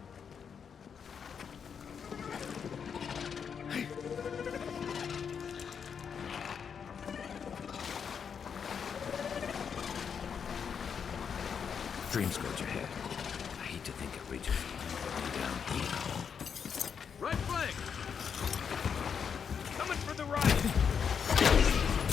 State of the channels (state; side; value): quieter; right; 6.9 dB